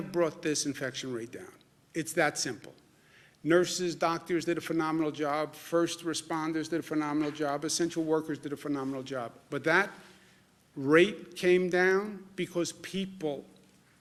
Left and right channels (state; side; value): identical; both; correlation 1.00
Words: brought this infection rate down. It's that simple. Nurses, doctors did a phenomenal job. First responders did a phenomenal job. Essential workers did a phenomenal job. But that rate came down because people